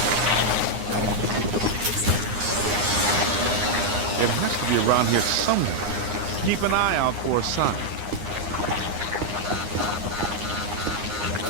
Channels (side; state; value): left; late; 9.7 ms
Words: It has to be around here somewhere. Keep an eye out for a sign.